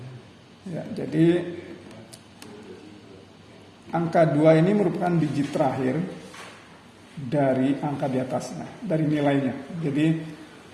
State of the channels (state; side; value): identical; both; correlation 1.00